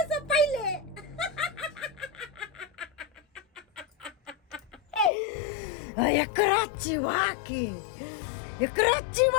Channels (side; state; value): right; drops out; at 5.1 s